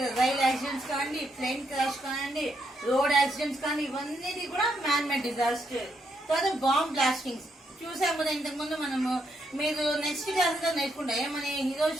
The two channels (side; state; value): both; normal; correlation 0.77